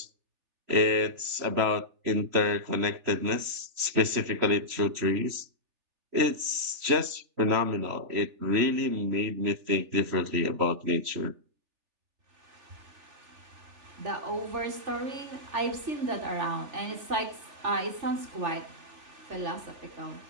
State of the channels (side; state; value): left; late; 3.1 ms